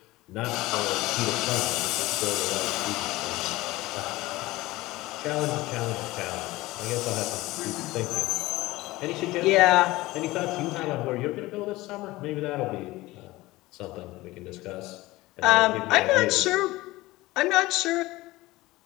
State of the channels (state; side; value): quieter; right; 19.2 dB